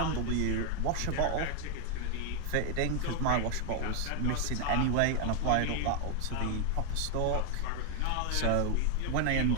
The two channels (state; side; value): different; both; correlation 0.00